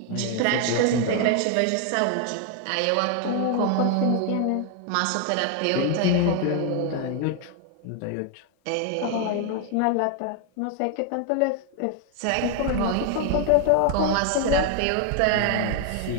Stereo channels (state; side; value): different; both; correlation 0.00